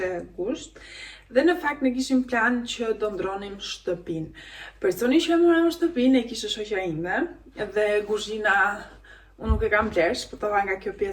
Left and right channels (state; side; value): identical; both; correlation 1.00